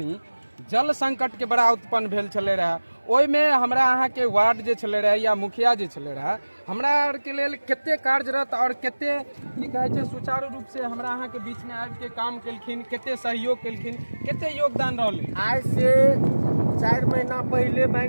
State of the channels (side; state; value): both; inverted; correlation -1.00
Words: जल संकट के बड़ा उत्पन्न भेल छले रहा। ओहि में हमरा अहाँ के वार्ड जे छले रहे या मुखिया जे छले रहा, हमरा आर के लेल कते कार्यरत और कते की कहे छै सुचारू रूप से हमरा अहाँ के बीच में आबि के काम केलखिन, कते सहयोग केलखिन, कते योगदान रहलै। आज से 4 महीना पहले